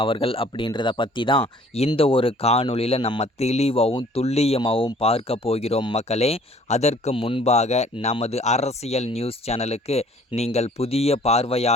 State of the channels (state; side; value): normal; both; correlation 0.55